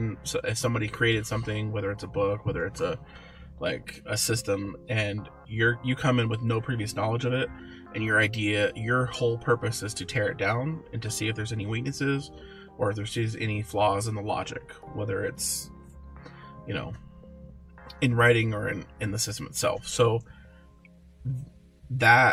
so if somebody created something, whether it's a book, whether it's a system, and you come in with no previous knowledge of it, and your whole purpose is to tear it down and to see if there's any weaknesses or if there's any flaws in the logic, whether it's, in writing or in the system itself. So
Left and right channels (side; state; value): both; identical; correlation 1.00